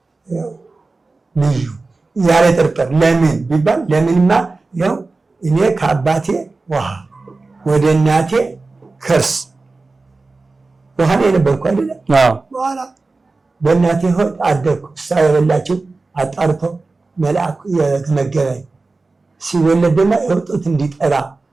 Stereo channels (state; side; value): quieter; left; 3.6 dB